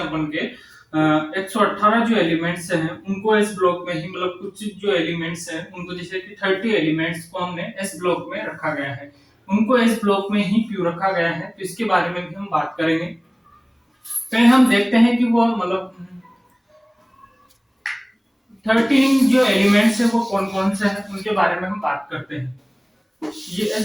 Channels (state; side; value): identical; both; correlation 1.00